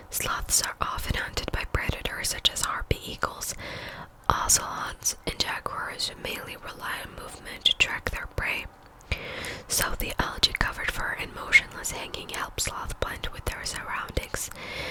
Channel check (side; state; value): both; identical; correlation 1.00